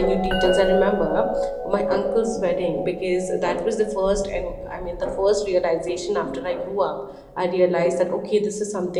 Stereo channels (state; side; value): identical; both; correlation 1.00